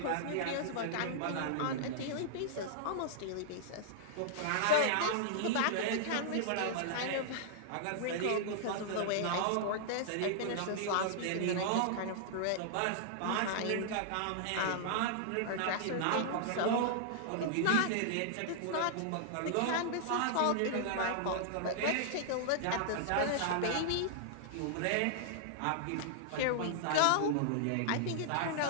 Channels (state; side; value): different; both; correlation -0.01